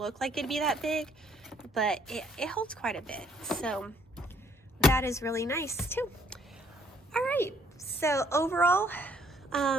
like it'd be that big, but it holds quite a bit. So that is really nice too. All right, so overall,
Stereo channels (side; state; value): both; normal; correlation 0.65